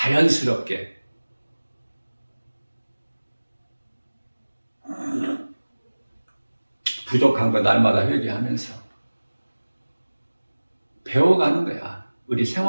부족한 거 날마다 회개하면서 배워가는 거야. 우리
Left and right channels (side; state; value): both; inverted; correlation -1.00